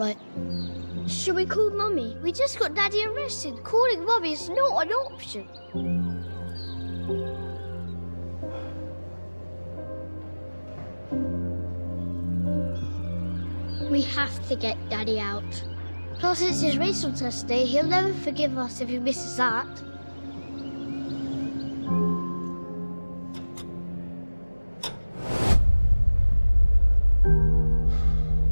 Should we call Mummy? We just got Daddy arrested. Calling Mummy is not an option. We have to get Daddy out. Plus, it's his racial test day. He'll never forgive us if he misses that.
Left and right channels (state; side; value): inverted; both; correlation -1.00